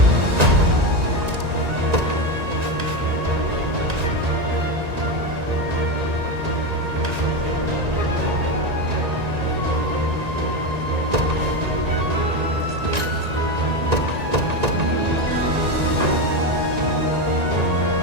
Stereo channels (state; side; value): late; left; 1.9 ms